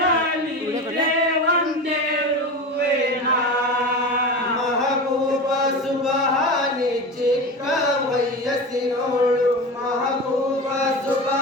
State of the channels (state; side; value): normal; both; correlation 0.28